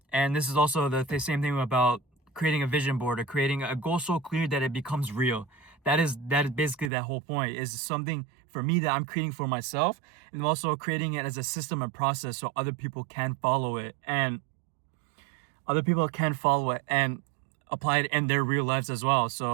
and this is also the same thing about creating a vision board or creating a goal so clear that it becomes real. That is basically that whole point, is something for me that I'm creating for myself, and also creating it as a system and process so other people can follow it and apply it in their real lives as well.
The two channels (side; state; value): left; drops out; at 6.9 s